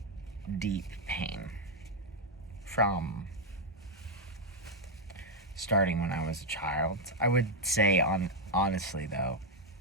deep pain from starting when I was a child. I would say, honestly though,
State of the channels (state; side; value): normal; both; correlation 0.00